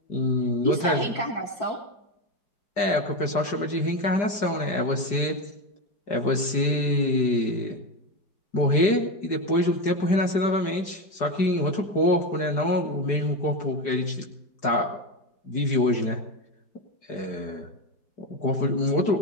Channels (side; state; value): right; late; 4.9 ms